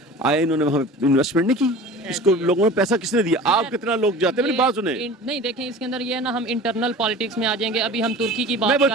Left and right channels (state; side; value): normal; both; correlation 0.39